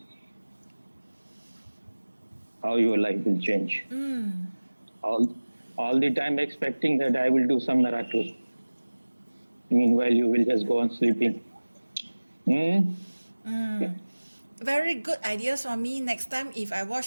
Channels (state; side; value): inverted; both; correlation -1.00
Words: how your life will change. All the time expecting that I will do some miracle. Meanwhile, you will just go on sleeping. Very good idea, Swami. Next time if I